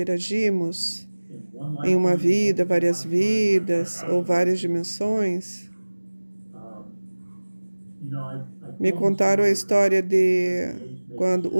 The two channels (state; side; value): inverted; both; correlation -1.00